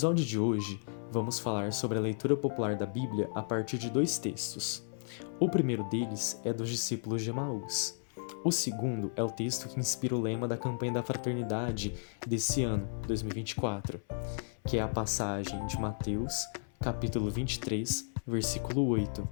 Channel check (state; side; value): silent; right; 55 dB below the other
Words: de hoje, vamos falar sobre a leitura popular da Bíblia a partir de dois textos. O primeiro deles é dos discípulos de Emaús. O segundo é o texto que inspira o lema da campanha da fraternidade desse ano, 2024, que é a passagem de Mateus, capítulo 23, versículo 8.